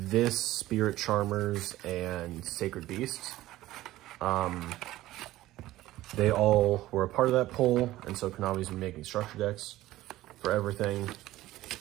Spirit Charmers, and Sacred Beasts. They all were a part of that poll, and so Konami's been making structure decks for everything.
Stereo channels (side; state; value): left; quieter; 16.1 dB